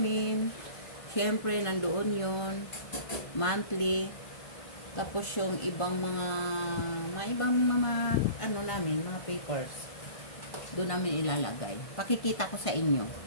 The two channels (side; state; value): right; late; 1.5 ms